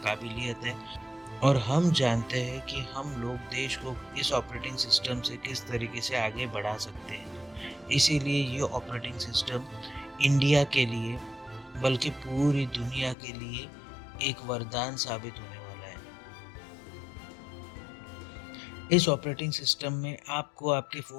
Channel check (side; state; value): right; drops out; at 13.2 s